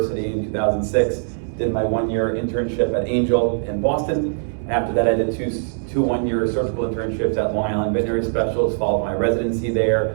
in 2006, did my 1-year internship at Angel in Boston. After that, I did two 1-year surgical internships at Long Island Veterinary Specialists, followed my residency there.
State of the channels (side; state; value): left; silent; 64 dB below the other